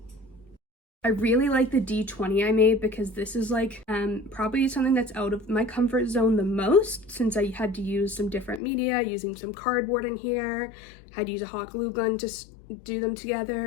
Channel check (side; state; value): right; drops out; at 8.6 s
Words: I really like the D20 I made because this is like probably something that's out of my comfort zone the most, since I had to use some different media, using some cardboard in here, had to use a hot glue gun to do them